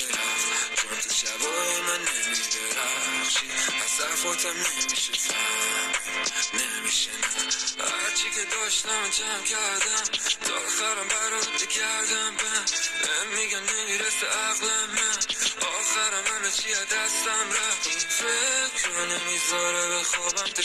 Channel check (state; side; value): identical; both; correlation 1.00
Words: چون تو شبای من نمیدرخشی، از حرفاتم نمیشه فهمید، نمیشه نه، هرچی که داشتم جمع کردم تا آخرم برات بگردم، بهم میگن نمیرسه عقلم، من آخرم همه چی از دستم رفت، این فکر رو نمیذاره به خوابم، تو